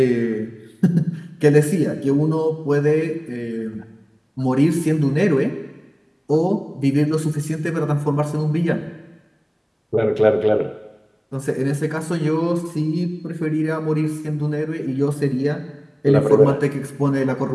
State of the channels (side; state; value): both; identical; correlation 1.00